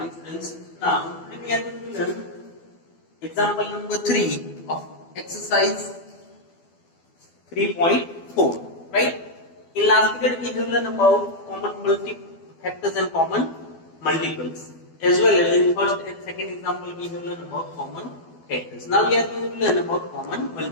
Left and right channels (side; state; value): right; late; 12 ms